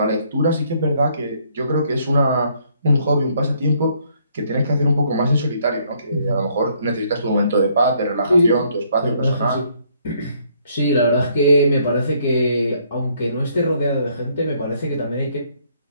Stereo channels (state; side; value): inverted; both; correlation -0.67